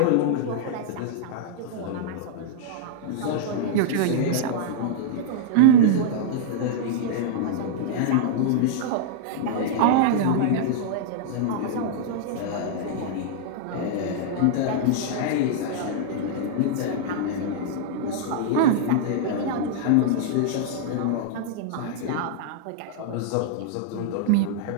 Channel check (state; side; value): different; both; correlation -0.01